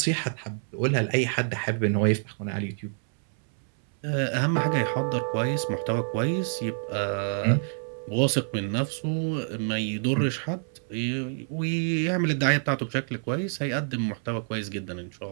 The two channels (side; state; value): left; silent; 60 dB below the other